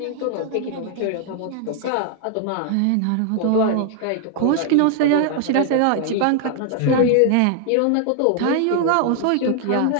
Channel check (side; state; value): both; different; correlation 0.00